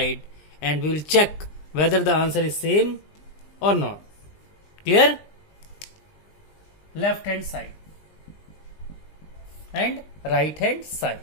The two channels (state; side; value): late; right; 20 ms